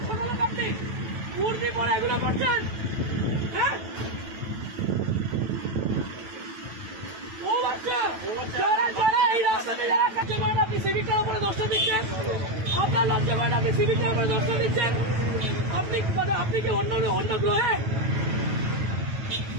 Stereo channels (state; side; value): late; left; 9.1 ms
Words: ছোট লোক আপনি মূর্তি পরে এগুলো করছেন? হ্যাঁ, ও বাচ্চা যারা যারা এই রাস্তাতে যারা কাজ করেন, আপনি সিভিকটার উপরে দোষটা দিচ্ছেন। আপনার লজ্জা করেন, আপনি সিভিকটার উপরে দোষটা দিচ্ছেন। আপনি কি অন্য গ্রহে?